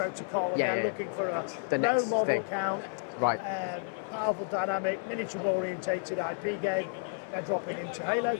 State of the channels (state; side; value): silent; right; 57 dB below the other